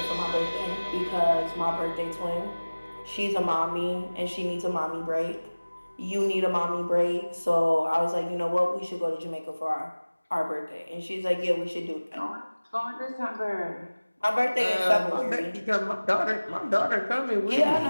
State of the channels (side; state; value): both; inverted; correlation -1.00